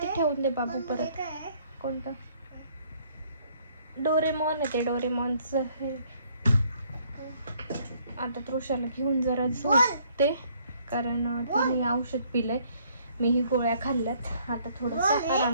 ठेवून दे बाबू. परत कोणतं डोरेमॉन आहे ते, डोरेमॉनचं हे. आता तृषाला घेऊन जरा झोपते, कारण तिने औषध पिलंय, मीही गोळ्या खाल्ल्यात. आता थोडंसं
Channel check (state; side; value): inverted; both; correlation -0.64